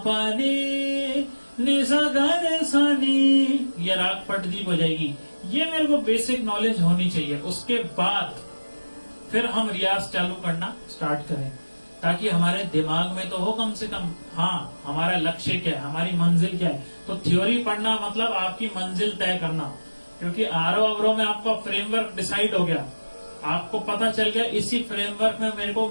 पा नी नि सा ग रे सा नी, ये राग पटदीप हो जाएगी। ये मेरे को बेसिक नॉलेज होनी चाहिए। उसके बाद फिर हम रियाज चालू करना स्टार्ट करें, ताकि हमारे दिमाग में तो हो कम से कम, हाँ हमारा लक्ष्य क्या है, हमारी मंजिल क्या है। तो थ्योरी पढ़ना मतलब आपकी मंजिल तय करना, क्योंकि आरोह अवरोह में आपका फ्रेमवर्क डिसाइड हो गया, आपको पता चल गया इसी फ्रेमवर्क में मेरे को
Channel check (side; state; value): both; inverted; correlation -1.00